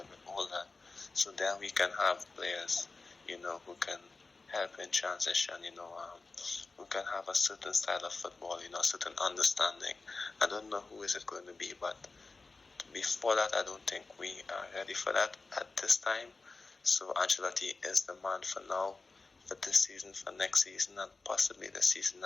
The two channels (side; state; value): right; quieter; 3.9 dB